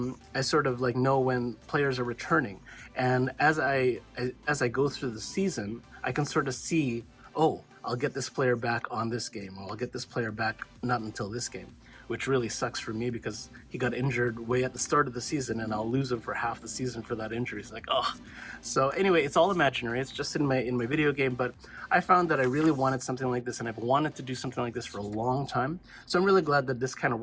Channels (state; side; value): identical; both; correlation 1.00